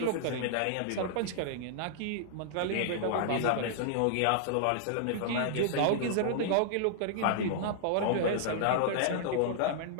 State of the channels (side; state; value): both; different; correlation -0.01